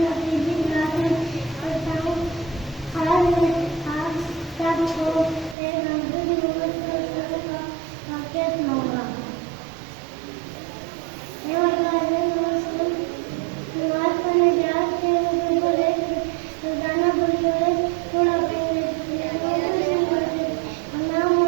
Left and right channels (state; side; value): drops out; left; at 5.6 s